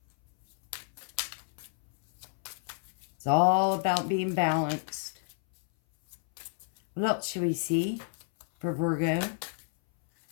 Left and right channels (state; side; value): silent; right; 58 dB below the other